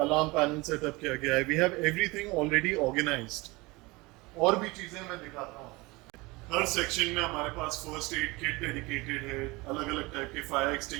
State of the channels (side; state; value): left; quieter; 23.7 dB